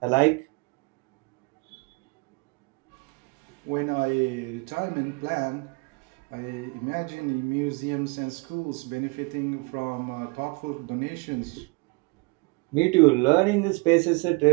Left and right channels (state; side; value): quieter; left; 28.8 dB